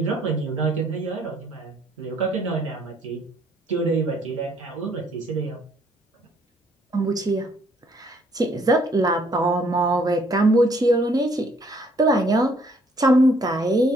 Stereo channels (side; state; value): both; normal; correlation 0.65